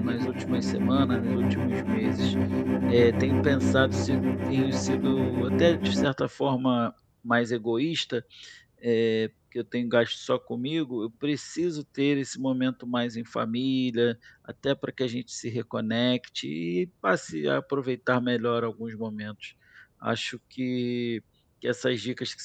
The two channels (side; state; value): both; identical; correlation 1.00